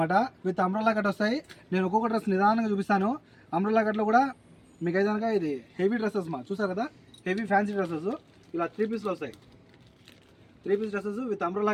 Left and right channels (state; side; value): identical; both; correlation 1.00